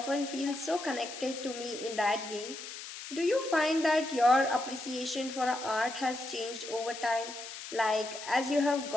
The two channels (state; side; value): noise; left; hiss, 11 dB below the sound